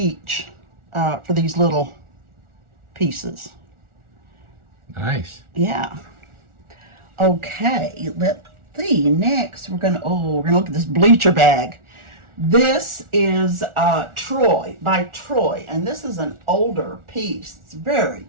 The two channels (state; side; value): late; left; 1.4 ms